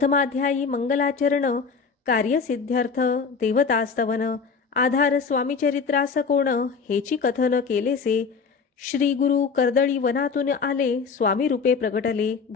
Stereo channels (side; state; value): right; quieter; 5.3 dB